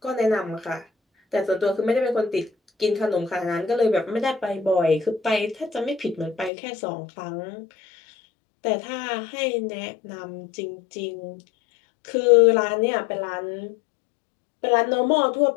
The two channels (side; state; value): right; drops out; at 6.5 s